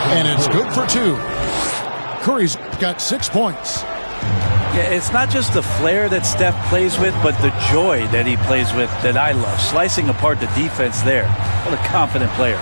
And it's good for 2. Curry's got 6 points. Yeah, it's not just the flair that Steph plays with, but the joy that he plays with that I love. Slicing apart the defense there. What a confident player.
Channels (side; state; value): both; inverted; correlation -1.00